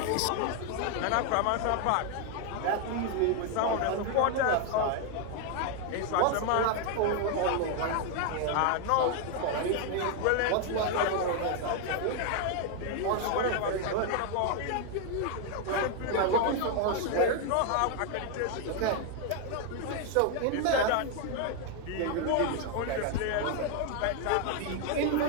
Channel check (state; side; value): different; both; correlation 0.01